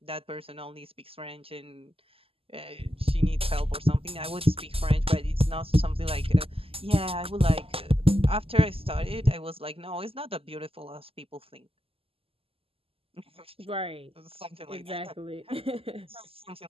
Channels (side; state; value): left; late; 0.27 ms